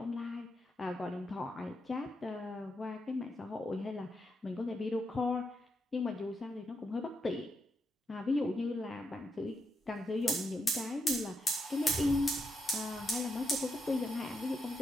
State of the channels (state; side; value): normal; both; correlation 0.82